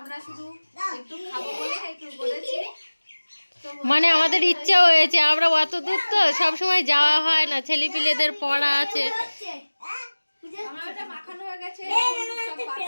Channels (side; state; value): both; inverted; correlation -1.00